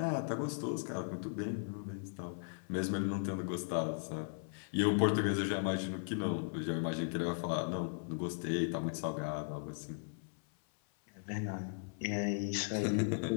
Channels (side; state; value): right; silent; 53 dB below the other